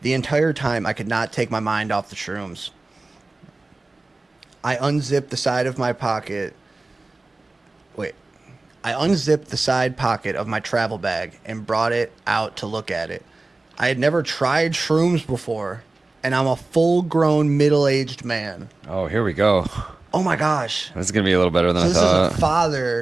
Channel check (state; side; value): quieter; left; 3.2 dB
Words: The entire time, I could not take my mind off the shrooms. I unzipped the side pocket of my travel bag and brought it out to look at it. I had never tried shrooms before, and I'm a full-grown, middle-aged man. Oh, here we go. Oh my gosh. This is going to be a little better than So I this thought. is a